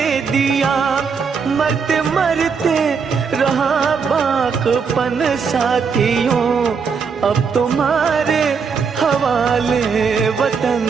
दिया। मरते मरते रहा बाकपन साथियों, अब तुम्हारे हवाले वतन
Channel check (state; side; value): quieter; left; 5.8 dB